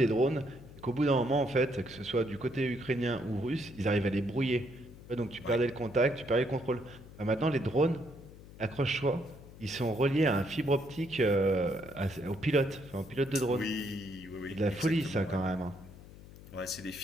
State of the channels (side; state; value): left; noise; hum, 18 dB below the sound